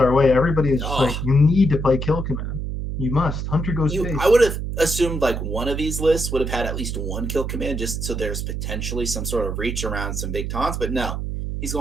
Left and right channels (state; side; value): noise; right; hum, 3 dB below the sound